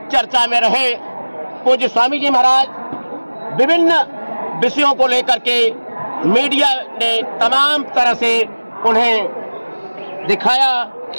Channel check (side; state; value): both; inverted; correlation -1.00